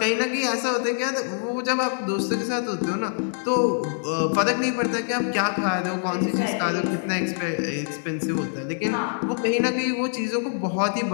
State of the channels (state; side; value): silent; right; digital silence